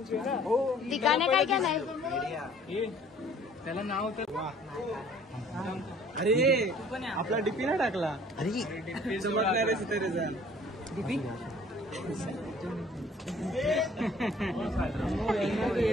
दिखाने काय क्या नाही. त्याला नाव तर अरे आपला डीपी ना टाकला. अरे दीपी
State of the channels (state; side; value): normal; both; correlation 0.54